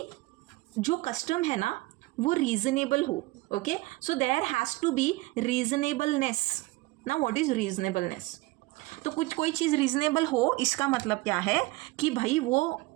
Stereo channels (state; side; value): quieter; left; 21.3 dB